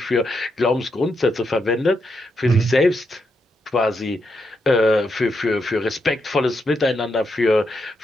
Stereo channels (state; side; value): normal; both; correlation 0.82